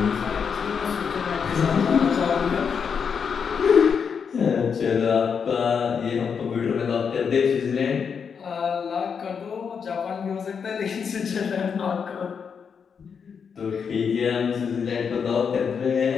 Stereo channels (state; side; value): quieter; right; 6.5 dB